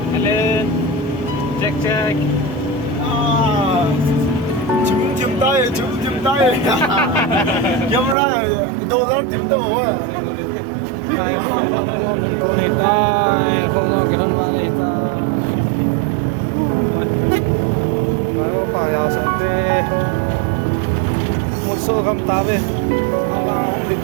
hello check Chim tay camera đâu đó tìm đâu tai khong gom ko nei tai khong gom ke nan wa nei tai mai pa ya sa te một số gam ta về không là không được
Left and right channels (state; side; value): drops out; left; at 8.2 s